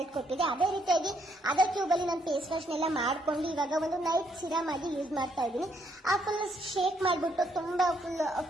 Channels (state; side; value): normal; both; correlation 0.72